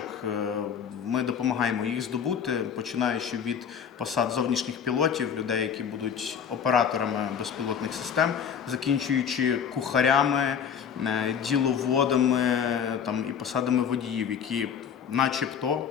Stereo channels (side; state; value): right; quieter; 7.6 dB